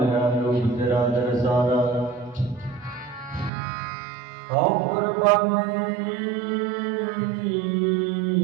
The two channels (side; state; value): left; drops out; at 3.5 s